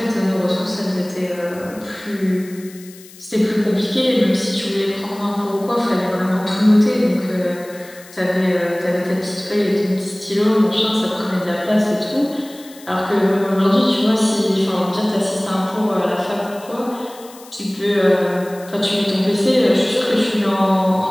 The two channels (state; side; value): noise; left; hiss, 21 dB below the sound